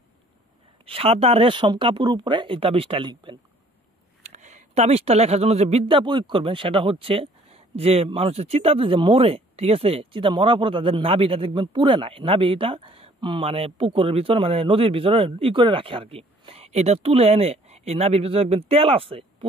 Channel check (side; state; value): both; normal; correlation 0.57